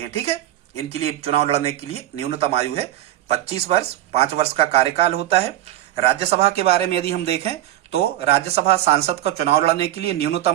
हैं। ठीक है, इनके लिए चुनाव लड़ने के लिए न्यूनतम आयु है 25 वर्ष, 5 वर्ष का कार्यकाल होता है। राज्यसभा के बारे में यदि हम देखें तो राज्यसभा सांसद का चुनाव लड़ने के लिए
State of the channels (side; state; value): left; quieter; 13.9 dB